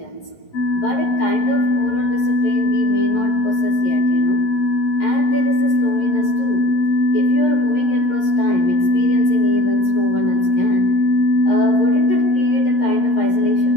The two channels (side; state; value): right; late; 11 ms